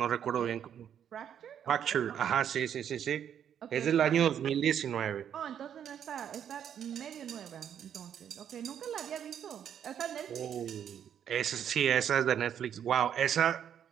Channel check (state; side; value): quieter; left; 9.1 dB